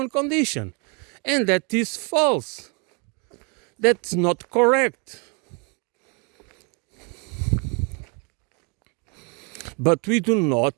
condition, and that is false. That's not correct. But we do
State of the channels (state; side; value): quieter; left; 32.8 dB